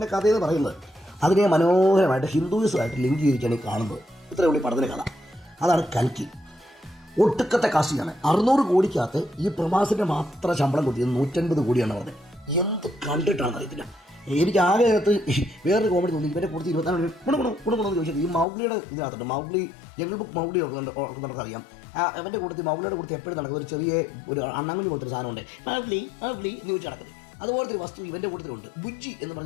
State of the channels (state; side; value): drops out; right; at 18.4 s